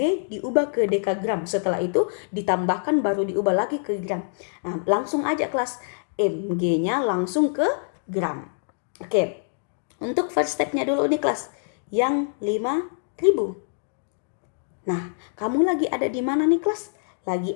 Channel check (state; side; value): silent; right; digital silence